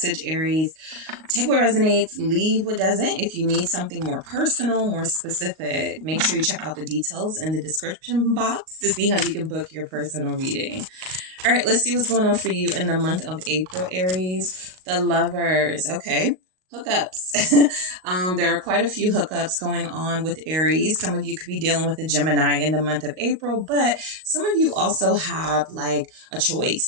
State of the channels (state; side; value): late; left; 38 ms